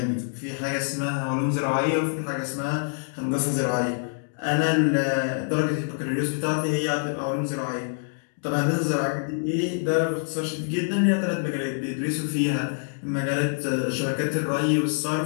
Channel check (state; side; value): silent; right; digital silence